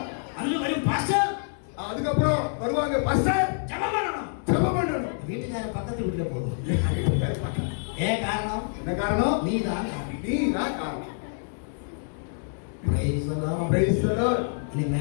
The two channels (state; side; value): silent; right; digital silence